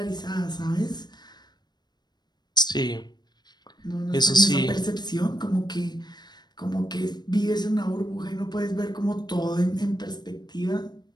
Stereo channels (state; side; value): late; right; 0.20 ms